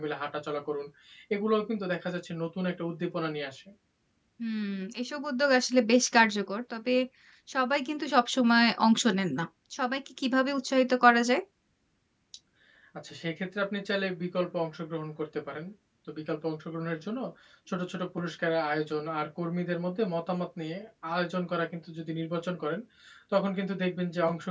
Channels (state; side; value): identical; both; correlation 1.00